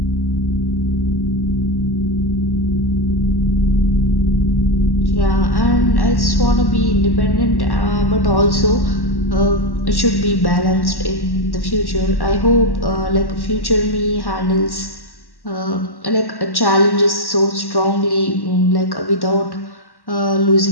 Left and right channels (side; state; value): right; late; 1.1 ms